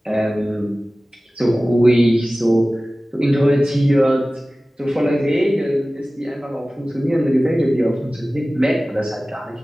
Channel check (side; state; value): both; normal; correlation 0.97